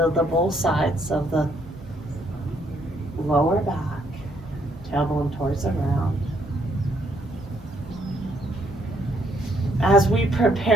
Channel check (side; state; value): both; normal; correlation 0.70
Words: the both sides of the lower back, tailbone towards the ground. As we